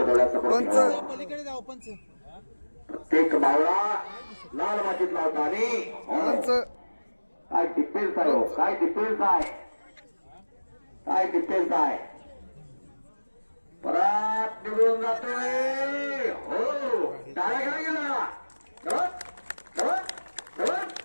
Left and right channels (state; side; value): inverted; both; correlation -1.00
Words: ठेवा. प्रत्येक मावळा लाल मातीत लावता. आणि काय डिफेन्स आहे, काय डिफेन्स आहे, काय डिफेन्स आहे. परत निघून जातोय. हो, डायरेक्ट गेला.